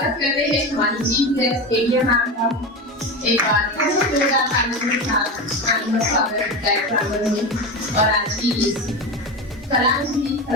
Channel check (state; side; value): normal; both; correlation 0.22